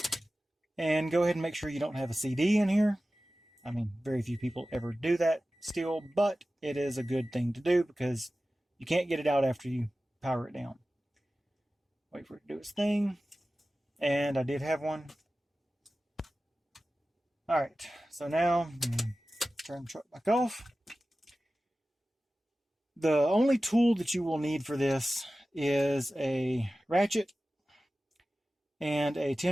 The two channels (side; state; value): both; normal; correlation 0.95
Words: and go ahead and make sure you don't have a CD in here. I mean, very few people ever do that still, but it is a good thing to do because you can't get it out after you power it down. Wait for it to do its thing. And I did have one. Alright, so now turn the truck back off. The only tool that you will need for this is a ratchet and a